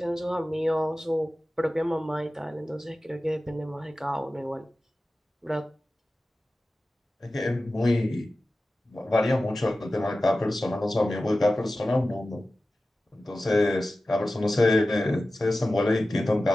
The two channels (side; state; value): both; normal; correlation 0.95